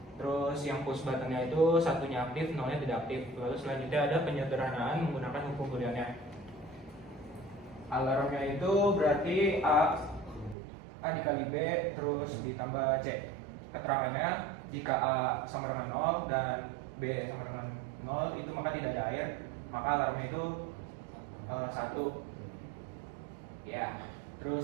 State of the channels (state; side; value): drops out; left; at 10.6 s